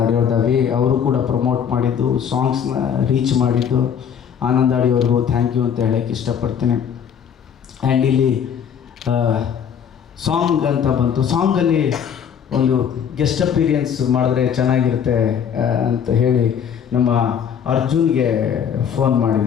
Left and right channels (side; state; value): right; quieter; 8.1 dB